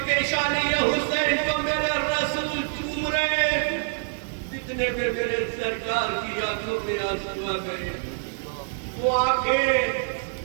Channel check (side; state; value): left; silent; digital silence